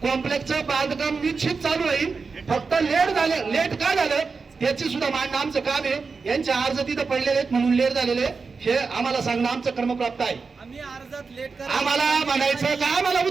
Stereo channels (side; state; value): left; quieter; 4.7 dB